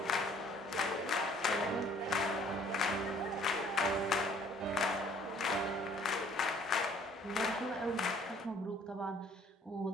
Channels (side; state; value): both; normal; correlation 0.57